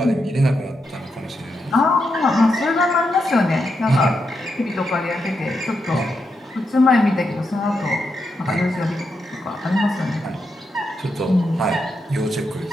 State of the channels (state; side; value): normal; both; correlation 0.84